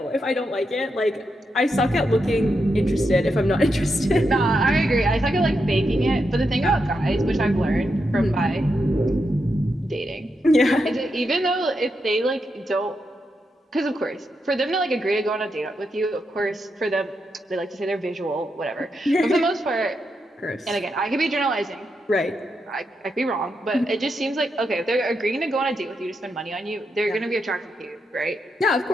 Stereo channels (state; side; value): normal; both; correlation 0.84